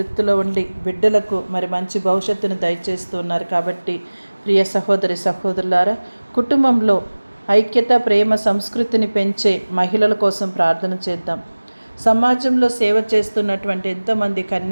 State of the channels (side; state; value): both; inverted; correlation -1.00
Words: ఉండి బిడ్డలకు మరి మంచి భవిష్యత్తును దయచేస్తూ ఉన్నారు. కాబట్టి ప్రియ సహోదరి సహోదరులారా, కుటుంబంలో ఐక్యత, ప్రేమ, సంస్కృతిని పెంచే మహిళల కోసం ప్రార్థన చేద్దాం. సమాజంలో సేవ చేస్తున్నటువంటి ఎంతోమంది